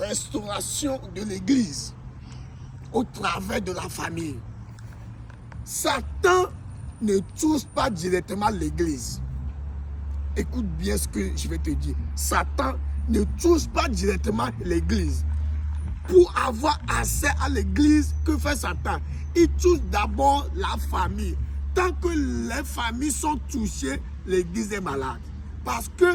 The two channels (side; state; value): both; identical; correlation 1.00